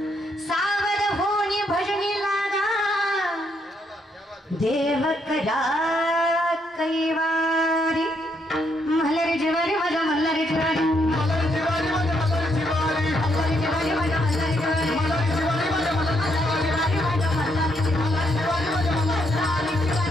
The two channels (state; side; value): normal; both; correlation 0.75